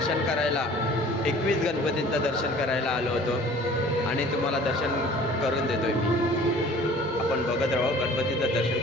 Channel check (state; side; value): normal; both; correlation 0.48